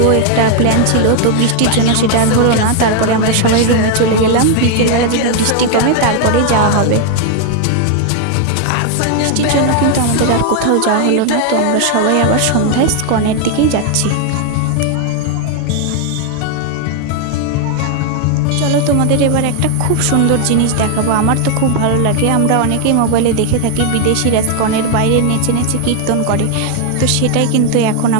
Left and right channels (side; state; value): both; different; correlation 0.00